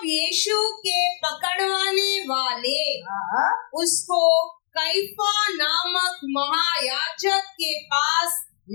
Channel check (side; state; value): right; silent; digital silence